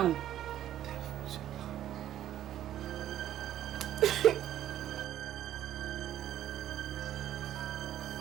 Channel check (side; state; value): left; quieter; 11.9 dB